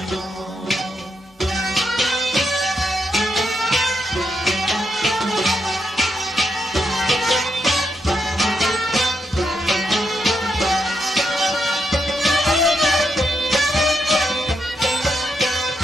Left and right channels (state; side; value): normal; both; correlation 0.81